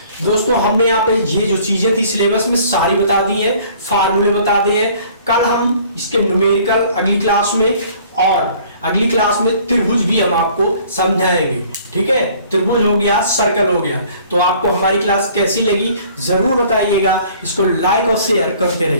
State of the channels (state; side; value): inverted; both; correlation -0.54